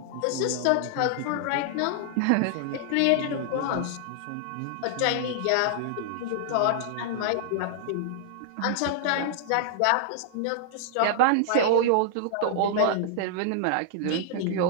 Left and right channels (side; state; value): both; different; correlation -0.01